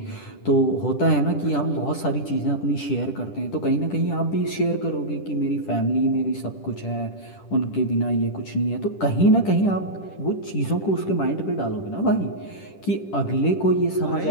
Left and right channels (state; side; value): late; right; 10 ms